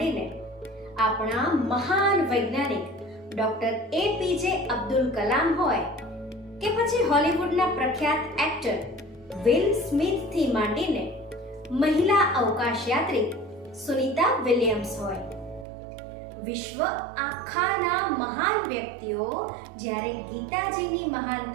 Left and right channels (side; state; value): left; drops out; at 15.7 s